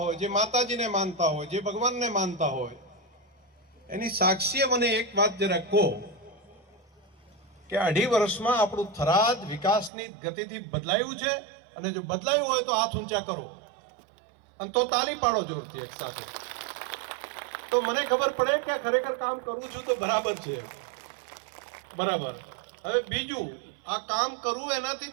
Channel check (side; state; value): left; drops out; at 9.9 s